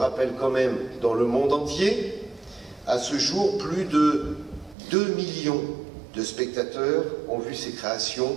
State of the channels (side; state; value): left; drops out; at 4.8 s